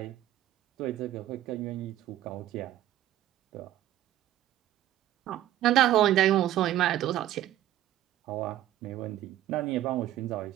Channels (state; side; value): quieter; left; 13.2 dB